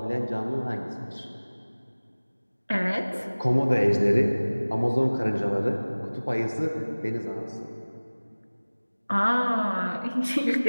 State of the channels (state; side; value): inverted; both; correlation -1.00